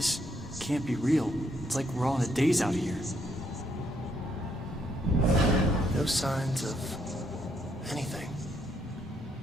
can't be real. It's like we're all in a daze out here. No signs of anything.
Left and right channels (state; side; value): normal; both; correlation 0.73